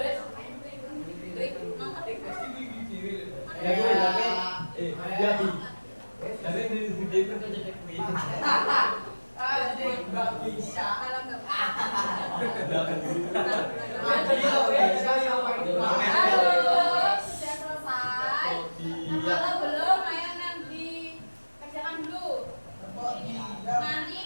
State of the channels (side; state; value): both; inverted; correlation -1.00